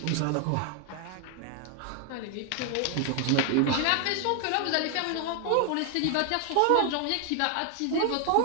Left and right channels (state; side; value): different; both; correlation 0.00